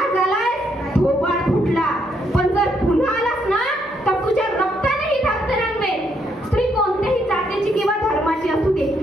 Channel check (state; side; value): normal; both; correlation 0.74